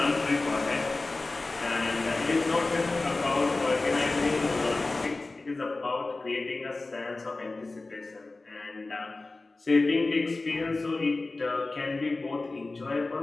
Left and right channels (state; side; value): quieter; right; 3.3 dB